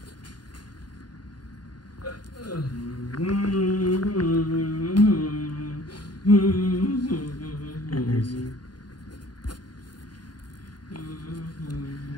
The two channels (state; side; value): late; right; 0.70 ms